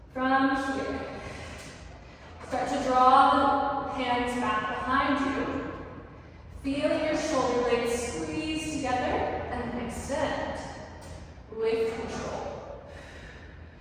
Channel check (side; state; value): both; identical; correlation 1.00